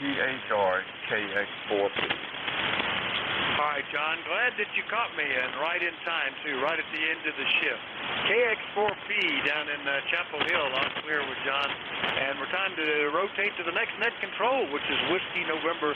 KX4P. All right, John, glad that you caught me, and right in time, too, right at the end of the shift. KX4P down in Chapel Hill, on clear with John, and we're time to rotate to the next net control, which is Whiskey November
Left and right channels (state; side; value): identical; both; correlation 1.00